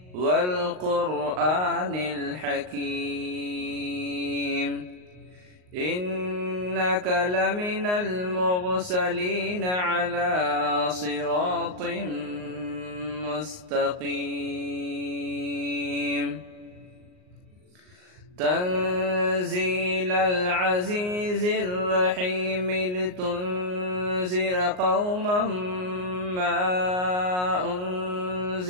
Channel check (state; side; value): late; left; 38 ms